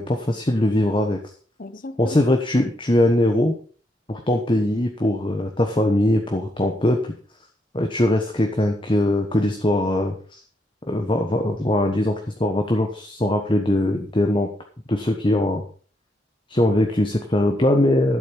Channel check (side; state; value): both; normal; correlation 0.78